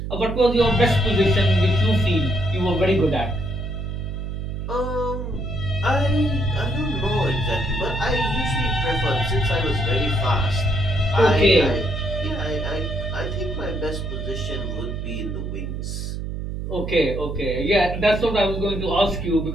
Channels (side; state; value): right; noise; hum, 5 dB below the sound